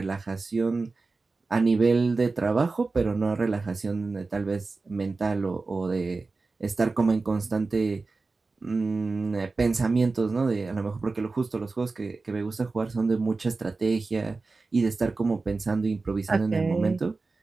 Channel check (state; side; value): quieter; left; 3.8 dB